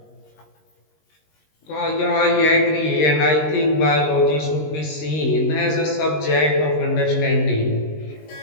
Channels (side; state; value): right; late; 19 ms